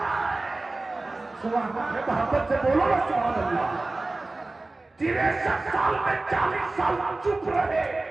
है। मोहब्बत से बोलो ना सुभान अल्लाह। 63 साल में 40 साल चुप रहे,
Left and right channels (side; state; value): left; quieter; 3.1 dB